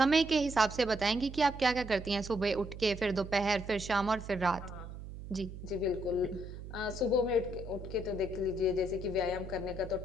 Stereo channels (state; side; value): noise; right; hum, 11 dB below the sound